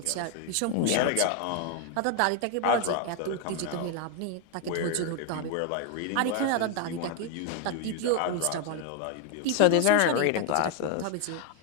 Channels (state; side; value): different; both; correlation 0.01